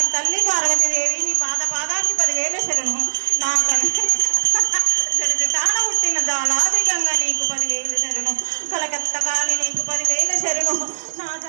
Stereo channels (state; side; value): silent; left; 61 dB below the other